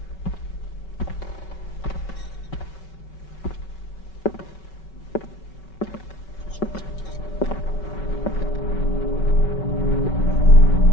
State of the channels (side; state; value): right; late; 5.3 ms